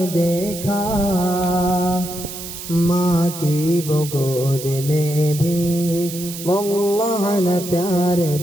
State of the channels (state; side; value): noise; right; hiss, 10 dB below the sound